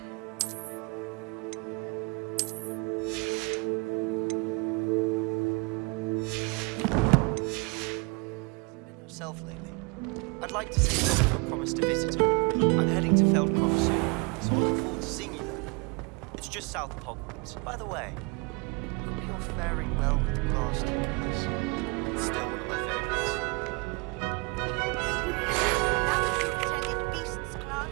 Yourself lately. I'd like to see if I promised to visit her. I'm heading to Feldcroft soon, so I look forward to seeing you there. It's just south of Hogwarts. By the way, hope you're faring well with the glass stickers. It's still one of my favorites. Lieutenant Beast's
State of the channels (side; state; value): left; quieter; 30.6 dB